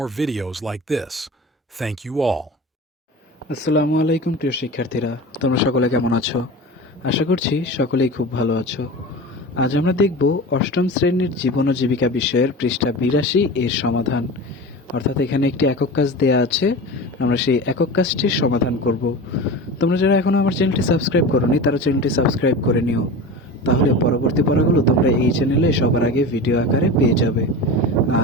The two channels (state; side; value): normal; both; correlation 0.31